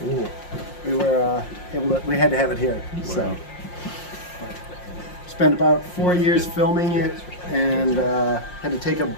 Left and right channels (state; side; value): late; right; 5.6 ms